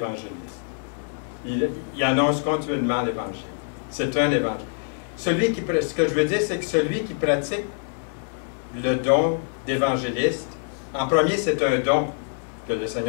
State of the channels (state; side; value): silent; right; digital silence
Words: Il annonce continuellement l'Évangile. C'est un évangile. Ce que je veux dire, c'est que celui qui pratique le don d'évangéliste, en premier, c'est un don que le